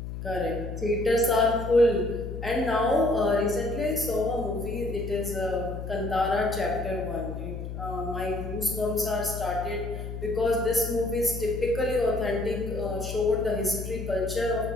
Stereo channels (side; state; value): left; noise; hum, 7 dB below the sound